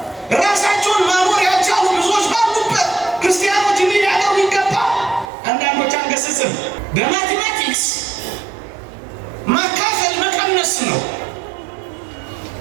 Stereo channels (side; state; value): left; drops out; at 5.3 s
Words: ራሳቸውን ማኖር ያልቻሉ ብዙዎች ባሉበት ክርስቲያኖች እንዲያደርጉ ይገባል። አንዳንዶች አንገስጽም። በማቴማቲክስ ማካፈል መቀነስ ነው።